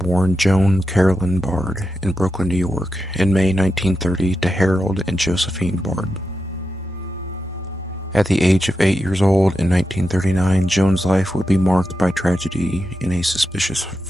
Joan Carolyn Bard in Brooklyn, New York, in May 1930 to Harold and Josephine Bard. At the age of 8 years old in 1939, Joan's life would be marked by tragedy in a suspicious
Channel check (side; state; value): both; normal; correlation 0.88